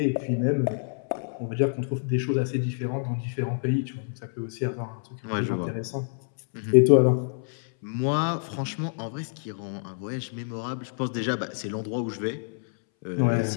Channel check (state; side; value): silent; right; 60 dB below the other